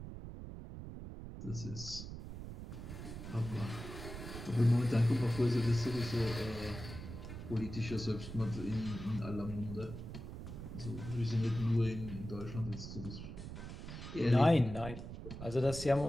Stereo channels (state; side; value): noise; right; rumble, 9 dB below the sound